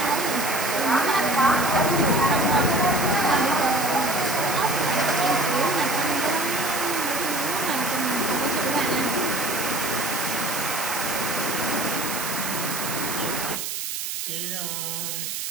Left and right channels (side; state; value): right; noise; hiss, 4 dB below the sound